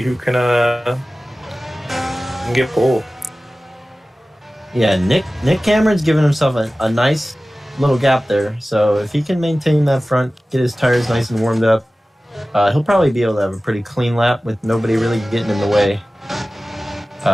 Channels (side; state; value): both; normal; correlation 0.97